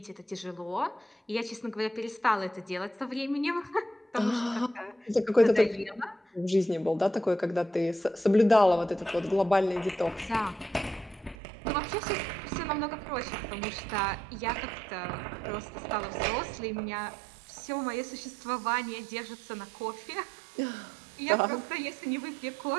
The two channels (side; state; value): left; drops out; at 11.4 s